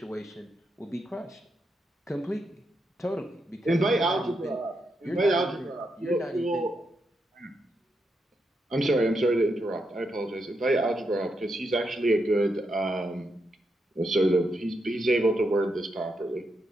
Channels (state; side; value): normal; both; correlation 0.83